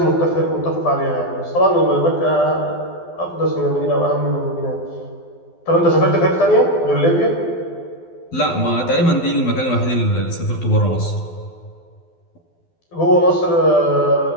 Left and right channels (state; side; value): late; right; 12 ms